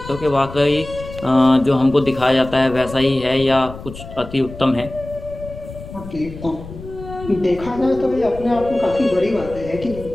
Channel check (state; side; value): noise; left; rumble, 14 dB below the sound